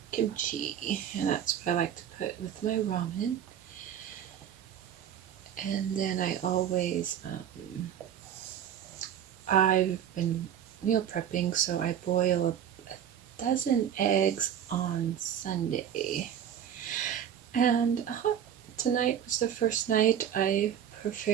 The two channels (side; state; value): left; quieter; 9.5 dB